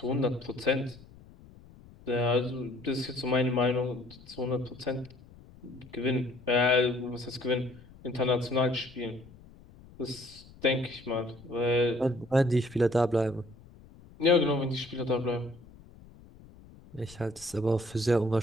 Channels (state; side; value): noise; left; rumble, 22 dB below the sound